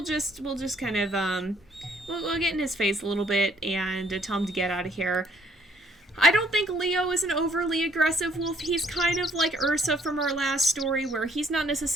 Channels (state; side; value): normal; both; correlation 0.65